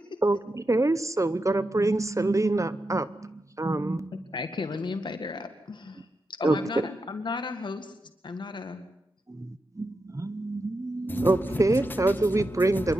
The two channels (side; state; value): both; normal; correlation 0.87